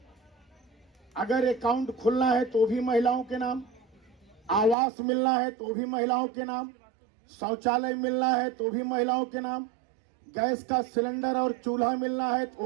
अगर अकाउंट खुलना है तो भी महिलाओं के नाम, आवास मिलना है तो भी महिलाओं के नाम, शौचालय मिलना है तो भी महिलाओं के नाम, गैस का सिलेंडर और चूल्हा मिलना है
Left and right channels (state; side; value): drops out; left; at 4.8 s